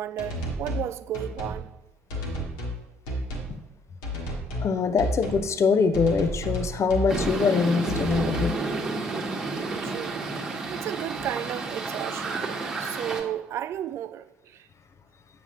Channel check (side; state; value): both; normal; correlation 0.64